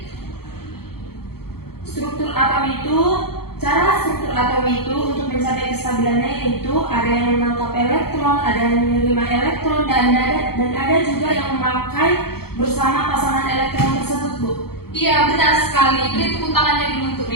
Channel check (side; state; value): right; late; 0.95 ms